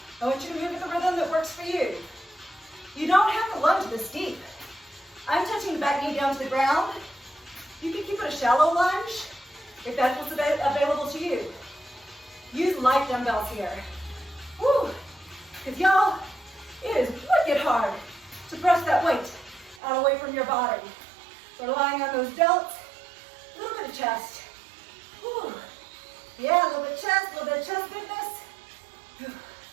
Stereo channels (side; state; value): left; drops out; at 19.8 s